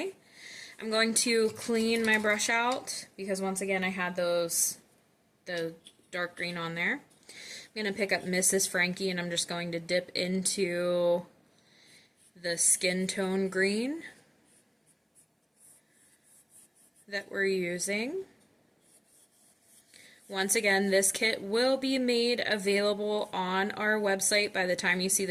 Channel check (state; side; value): identical; both; correlation 1.00